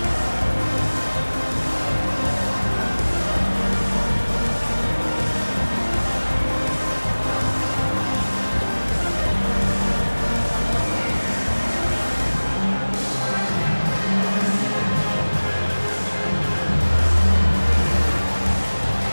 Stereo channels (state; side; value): inverted; both; correlation -1.00